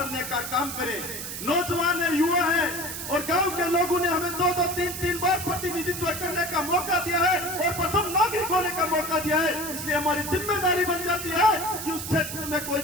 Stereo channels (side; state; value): right; noise; hiss, 7 dB below the sound